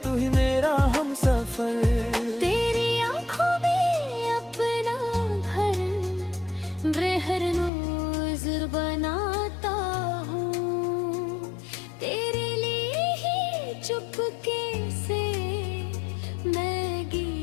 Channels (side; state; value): right; drops out; at 7.7 s